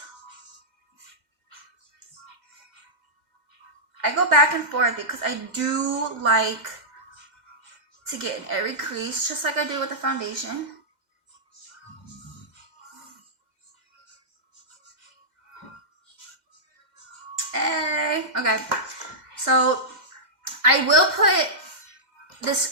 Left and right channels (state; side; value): late; left; 2.1 ms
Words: I go back and forth because I do like to get in every crease, just like I do with the foundation. Hey. Okay, so I will put this,